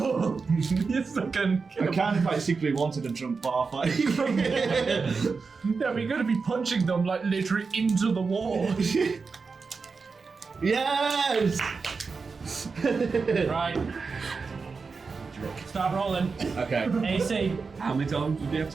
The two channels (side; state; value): left; quieter; 4.7 dB